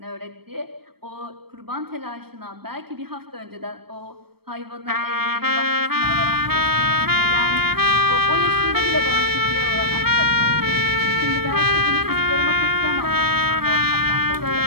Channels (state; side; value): late; left; 0.96 ms